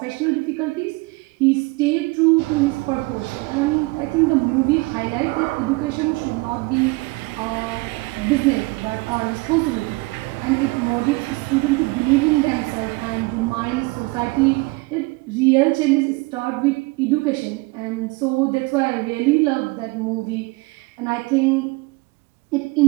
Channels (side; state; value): left; quieter; 24.8 dB